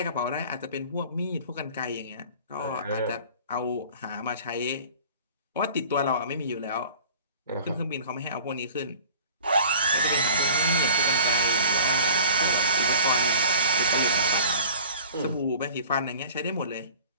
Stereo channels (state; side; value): inverted; both; correlation -0.44